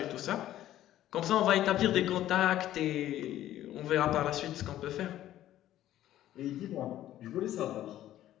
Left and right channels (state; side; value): quieter; right; 13.1 dB